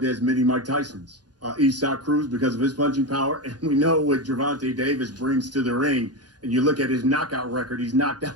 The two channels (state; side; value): late; left; 0.69 ms